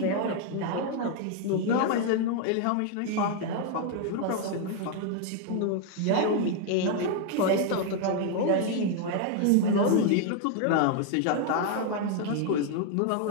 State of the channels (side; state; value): both; different; correlation 0.00